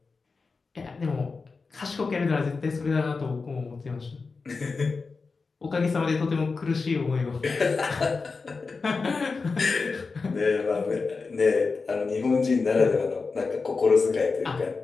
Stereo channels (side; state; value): right; quieter; 4.4 dB